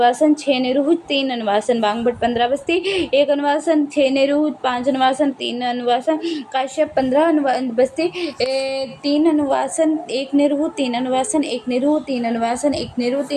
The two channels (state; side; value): identical; both; correlation 1.00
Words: 6 निरूप, 3 अनुवासन। वाग्भट 15 बस्ती, 1 अनुवासन, 6 निरूप, 5 अनुवासन, 3 अनुवासन। काश्यप 15 बस्ती, 3 अनुवासन, 1 निरूप, 3 अनुवासन, 1 निरूप, 3 अनुवासन, 1 निरूप,